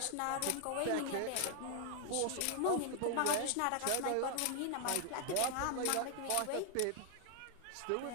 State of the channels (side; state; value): both; different; correlation 0.00